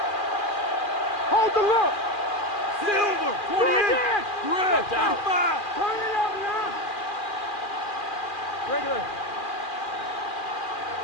Hold the look. Silver, 28. Red, 35. Turn it up now. Regular.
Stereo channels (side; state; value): right; late; 2.4 ms